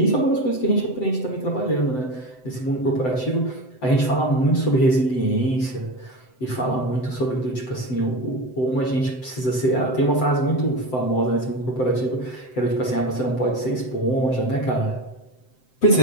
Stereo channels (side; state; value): right; late; 7.8 ms